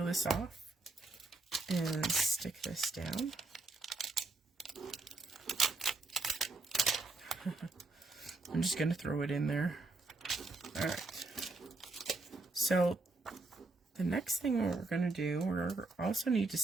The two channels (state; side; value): quieter; left; 3.4 dB